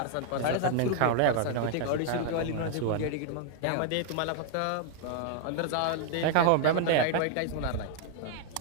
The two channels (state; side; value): different; both; correlation 0.00